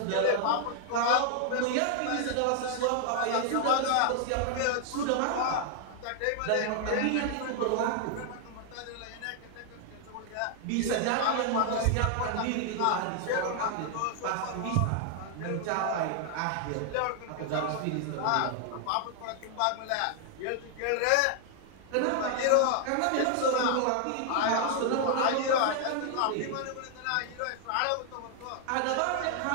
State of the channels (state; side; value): different; both; correlation 0.00